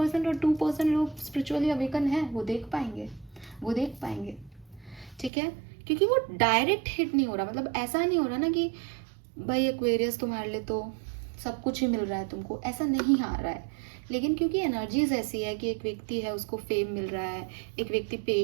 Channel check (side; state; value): left; drops out; at 5.3 s